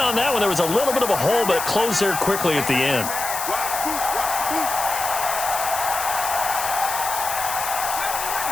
that one, there was a little bit of a hole, but it closed there quickly at the end.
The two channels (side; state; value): left; noise; hiss, 5 dB below the sound